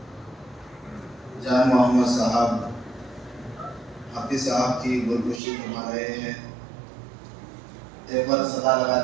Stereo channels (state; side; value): drops out; left; at 5.4 s